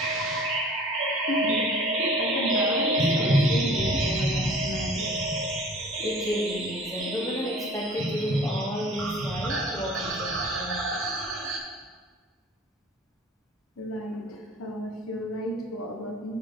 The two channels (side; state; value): both; normal; correlation 0.46